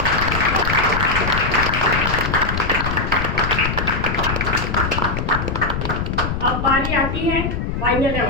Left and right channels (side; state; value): left; noise; rumble, 2 dB below the sound